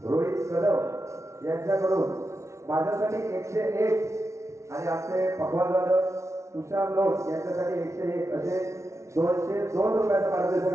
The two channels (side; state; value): left; late; 0.14 ms